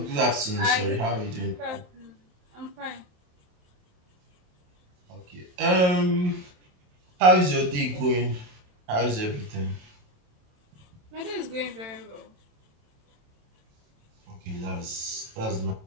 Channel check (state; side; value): late; left; 28 ms